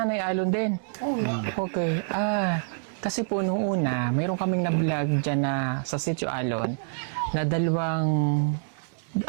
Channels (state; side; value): silent; left; digital silence